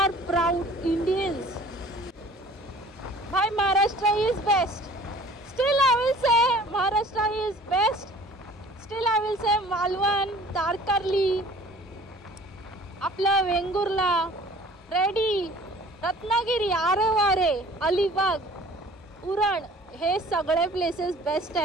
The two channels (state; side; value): normal; both; correlation 0.49